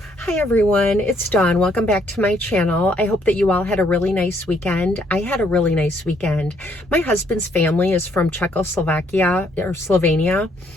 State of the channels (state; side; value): normal; both; correlation 0.69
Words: Hi everyone, it's Dawn. Welcome back to my channel. I hope that you all had a really nice weekend. I had a really nice weekend. My husband's family is from Czechoslovakia or Slovenia,